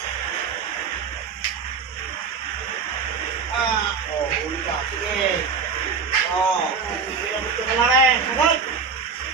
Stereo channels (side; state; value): left; quieter; 5.6 dB